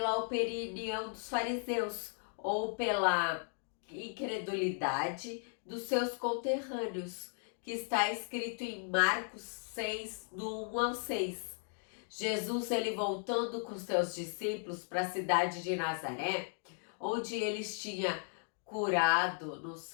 opinião dos fariseus ou pela incredulidade dos seus conterrâneos, que está escrito em Marcos 6, do 1 ao 6. Jesus, ele voltando com seus discípulos para a cidade de Nazaré, onde eles tinham curado no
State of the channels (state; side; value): silent; right; 54 dB below the other